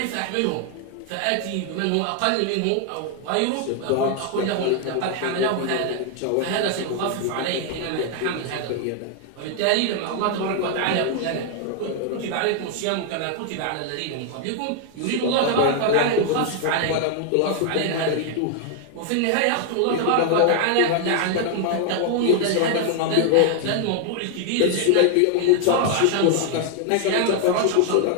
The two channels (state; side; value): different; both; correlation 0.00